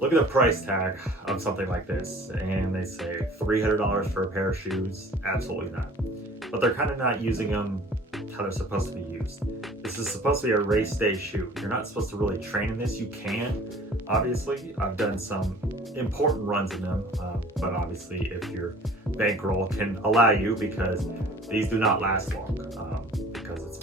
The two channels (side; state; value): both; normal; correlation 0.48